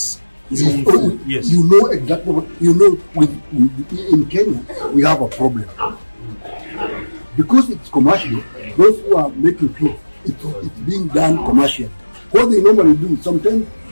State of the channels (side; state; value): both; inverted; correlation -1.00